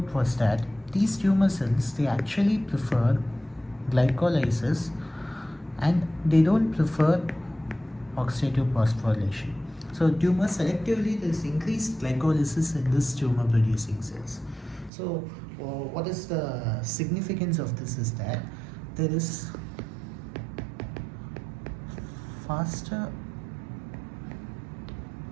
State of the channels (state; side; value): drops out; left; at 14.9 s